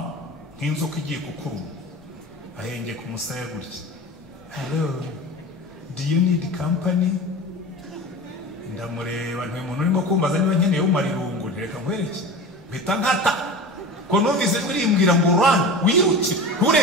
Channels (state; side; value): normal; both; correlation 0.32